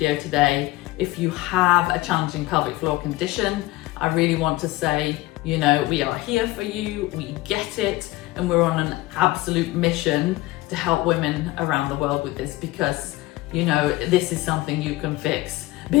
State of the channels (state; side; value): quieter; right; 18.8 dB